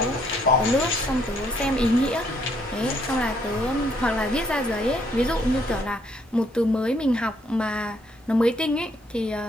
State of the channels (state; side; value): normal; both; correlation 0.68